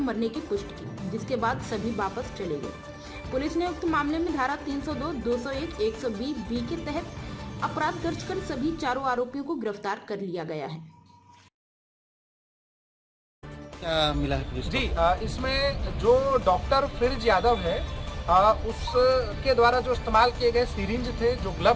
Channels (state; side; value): identical; both; correlation 1.00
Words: की पुष्टि की, जिसके बाद सभी वापस चले गए। पुलिस ने उक्त मामले में धारा 302, 201, 120B के तहत अपराध दर्ज कर सभी चारों आरोपियों को गिरफ्तार कर लिया गया है। क्या मिला है पुलिस जी? इसमें जो डॉक्टर फ्रिज यादव है उसके द्वारा जो इस्तेमाल किए गए सिरिंज थे, जो